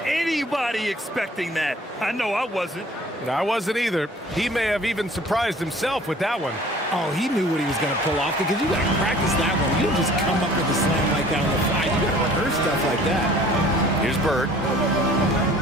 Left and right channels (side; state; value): both; normal; correlation 0.51